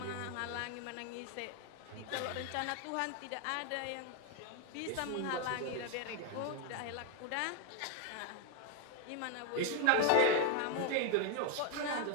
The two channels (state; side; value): different; both; correlation 0.01